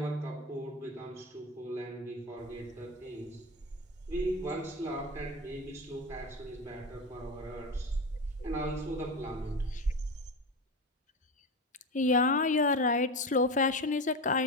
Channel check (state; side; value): normal; both; correlation 0.21